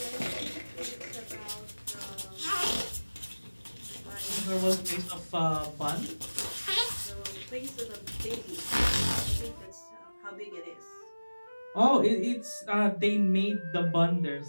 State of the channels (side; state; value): both; inverted; correlation -1.00